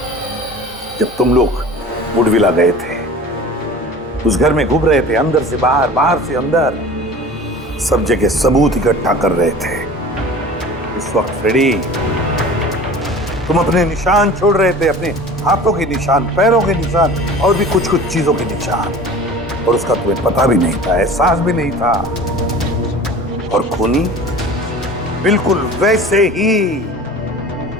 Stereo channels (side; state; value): both; normal; correlation 0.40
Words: जब तुम लोग वुडविला गए थे, उस घर में घूम रहे थे, अंदर से बाहर, बाहर से अंदर, सब जगह सबूत इकट्ठा कर रहे थे। उस वक्त फ्रेडी, तुम अपने निशान छोड़ रहे थे, अपने हाथों के निशान, पैरों के निशान और भी कुछ कुछ चीजों के निशान, और उसका तुम्हें पता भी नहीं था, एहसास भी नहीं था। और खूनी बिल्कुल वैसे ही